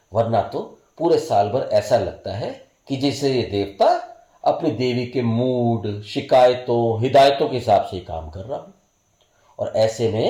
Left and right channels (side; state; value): both; identical; correlation 1.00